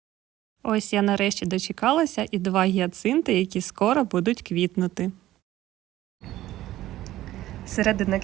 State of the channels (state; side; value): quieter; left; 14.8 dB